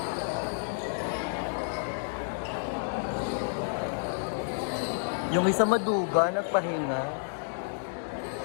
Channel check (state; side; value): silent; right; digital silence